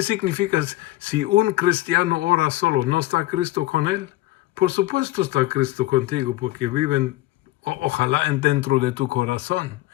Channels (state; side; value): quieter; right; 17.2 dB